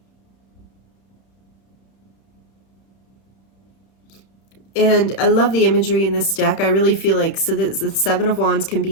And I love the imagery in this deck. I really feel like, so the Seven of Wands can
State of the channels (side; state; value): right; late; 31 ms